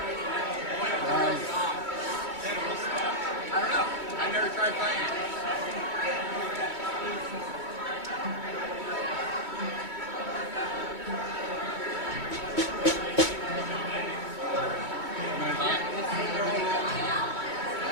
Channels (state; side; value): late; left; 2.2 ms